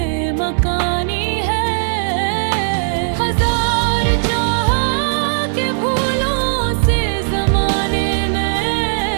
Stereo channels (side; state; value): left; silent; digital silence